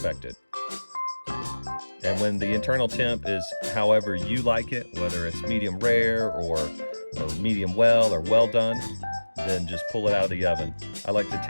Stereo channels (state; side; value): inverted; both; correlation -1.00